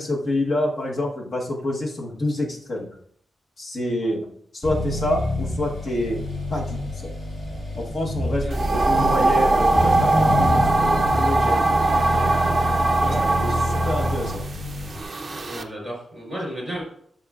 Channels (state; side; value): normal; both; correlation 0.90